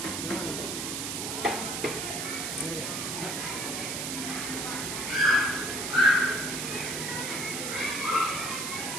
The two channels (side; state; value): right; noise; hiss, 3 dB below the sound